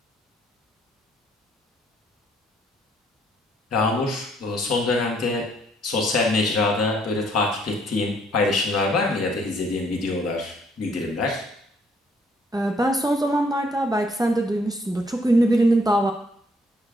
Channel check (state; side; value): normal; both; correlation 0.66